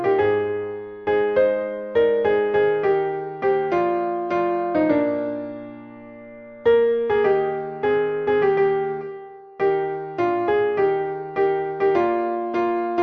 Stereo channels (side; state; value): both; identical; correlation 1.00